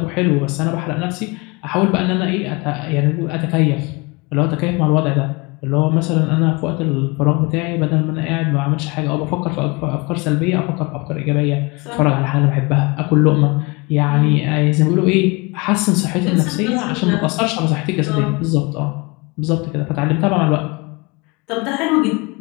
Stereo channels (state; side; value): quieter; right; 26.9 dB